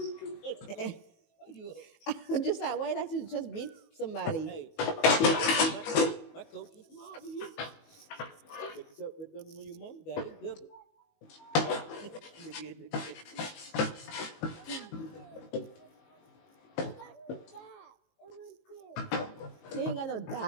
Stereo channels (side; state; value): right; late; 19 ms